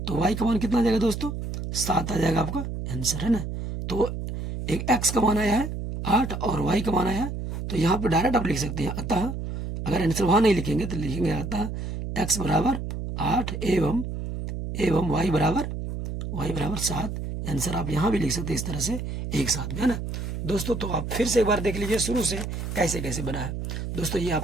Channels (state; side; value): noise; right; hum, 5 dB below the sound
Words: तो y का मान कितना आ जाएगा दोस्तों, 7 आ जाएगा आपका आंसर, है ना। तो एक x का मान आया है 8 और y का मान आया है, तो यहाँ पे डायरेक्ट आप लिख सकते हैं। अतः अगर आंसर वहाँ नहीं लिखेंगे तो लिखेंगे अतः x बराबर 8 एवं y बराबर 7। आंसर आप यहाँ भी लिख सकते हैं इस तरह से एक साथ में, है ना दोस्तों। तो आप फिर से एक बार देख लीजिए शुरू से कैसे कैसे बना है दोस्तों। ये